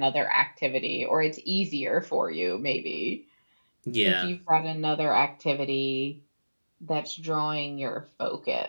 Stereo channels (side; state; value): both; inverted; correlation -1.00